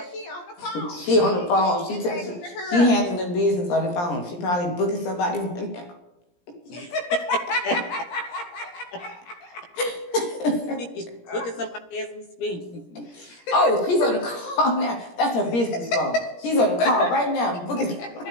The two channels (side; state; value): right; late; 17 ms